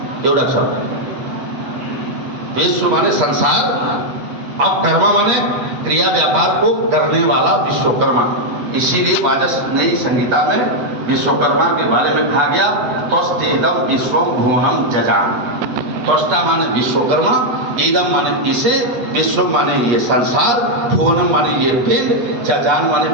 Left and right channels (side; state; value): left; late; 8.4 ms